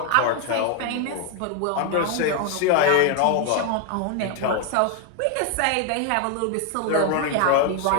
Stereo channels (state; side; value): different; both; correlation 0.00